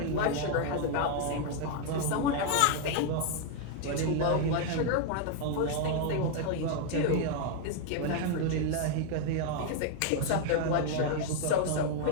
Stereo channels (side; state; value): both; different; correlation 0.00